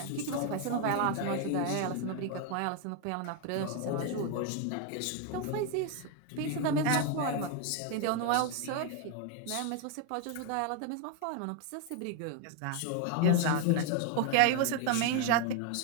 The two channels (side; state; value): both; different; correlation 0.01